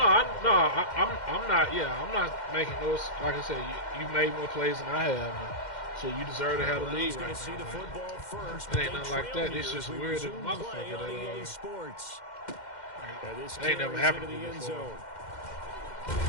not. Yeah, I'm not making those. Like I said, you made more plays than I have, so you deserve to have the lead He's going right to see now. the man. football first. It ain't but nothing they like trail that. It's here just as we weird as a resume play motherfucker on that, EA Sports. And this It ain't never carries happened into to the me end before. zone.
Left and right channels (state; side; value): late; right; 2.1 ms